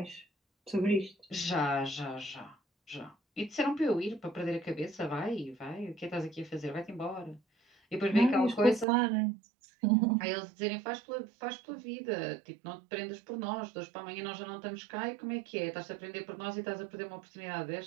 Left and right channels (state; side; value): drops out; left; at 8.8 s